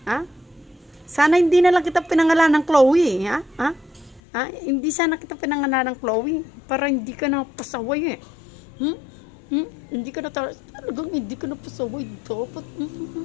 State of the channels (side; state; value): right; drops out; at 4.2 s